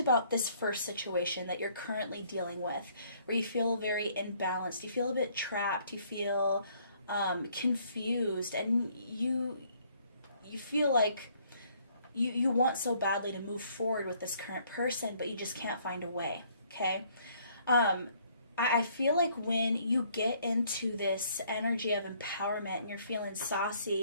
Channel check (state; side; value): inverted; both; correlation -0.64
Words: this first situation that you're currently dealing with, where you feel very imbalanced, you feel a bit trapped, you feel confused, and you feel like you want so badly to move forward with this current person, but you just can't find a way, okay? I feel like when you get into this energy of empowerment and you're feeling